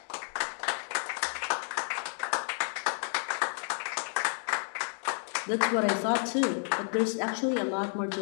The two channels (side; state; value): right; silent; 57 dB below the other